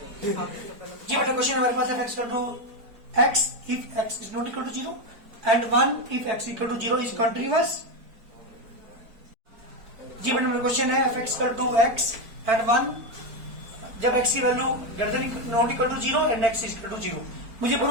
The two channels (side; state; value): left; late; 4.5 ms